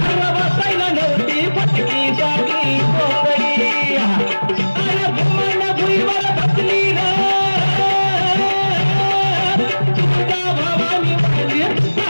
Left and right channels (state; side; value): inverted; both; correlation -1.00